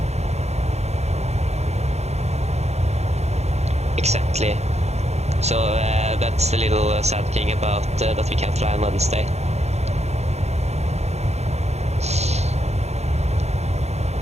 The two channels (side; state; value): left; late; 0.31 ms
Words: Exactly. So that's the little sad thing about that we can't fly on Wednesday.